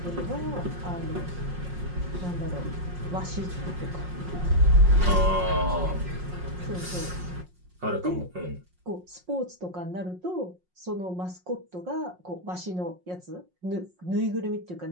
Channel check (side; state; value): left; late; 5.5 ms